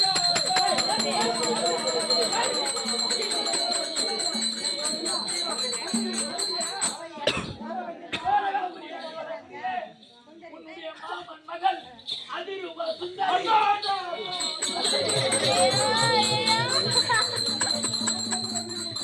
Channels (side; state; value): both; identical; correlation 1.00